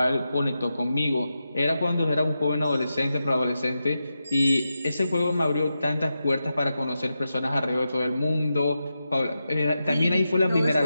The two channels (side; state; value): both; inverted; correlation -0.89